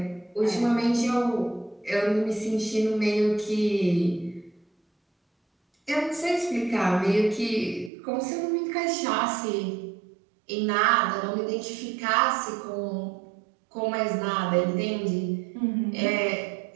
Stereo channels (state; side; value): drops out; left; at 7.9 s